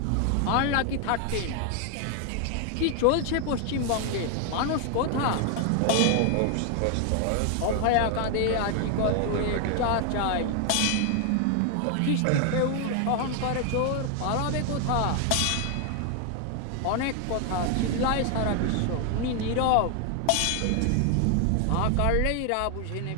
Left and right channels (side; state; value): both; different; correlation 0.00